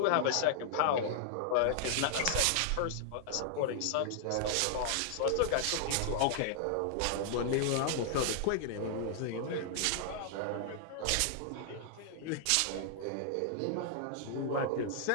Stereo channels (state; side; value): different; both; correlation -0.01